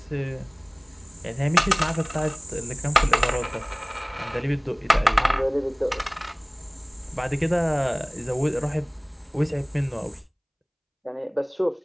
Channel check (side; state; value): both; identical; correlation 1.00